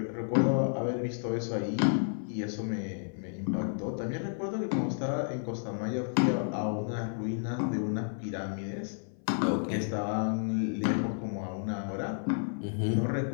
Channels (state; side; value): silent; right; 57 dB below the other